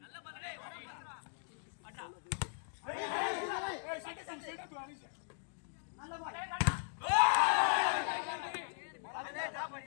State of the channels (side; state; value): right; silent; digital silence